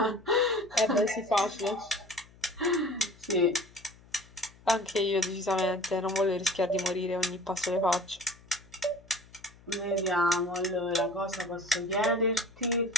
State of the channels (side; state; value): left; noise; hum, 25 dB below the sound